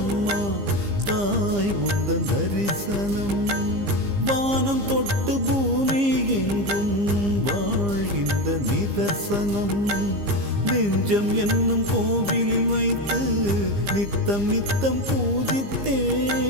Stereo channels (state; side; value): late; left; 15 ms